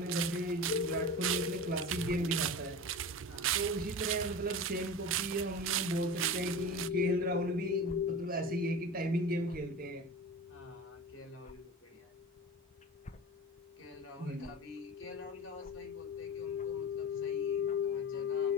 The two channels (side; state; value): both; normal; correlation 0.31